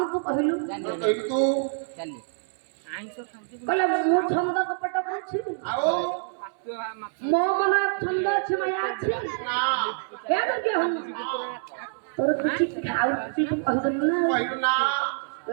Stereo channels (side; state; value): left; silent; digital silence